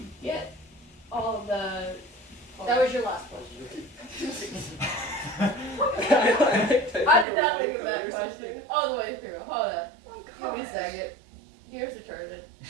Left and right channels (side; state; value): left; drops out; at 7.2 s